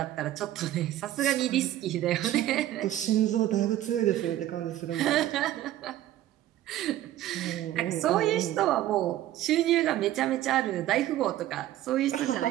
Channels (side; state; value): left; quieter; 13.5 dB